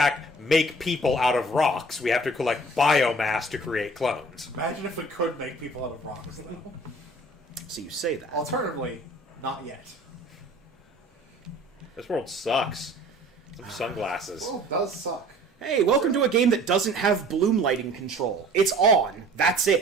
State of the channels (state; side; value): normal; both; correlation 0.49